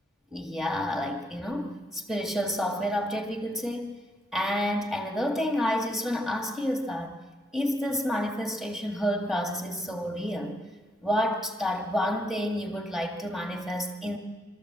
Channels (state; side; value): normal; both; correlation 0.75